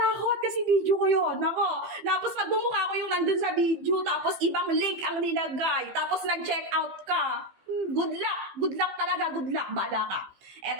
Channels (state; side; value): late; left; 15 ms